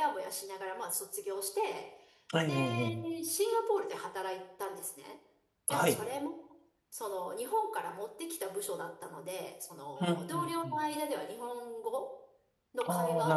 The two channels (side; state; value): both; identical; correlation 1.00